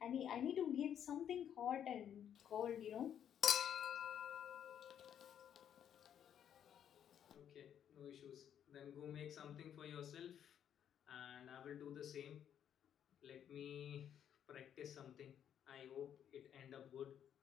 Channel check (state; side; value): quieter; right; 9.4 dB